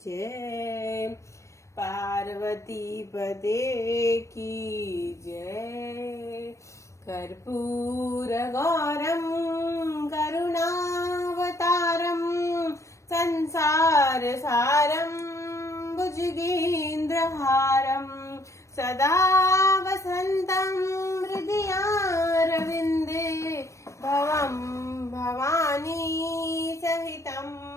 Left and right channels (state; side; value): late; right; 0.15 ms